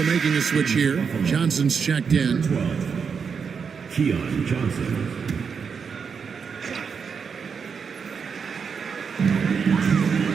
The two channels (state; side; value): quieter; left; 6.1 dB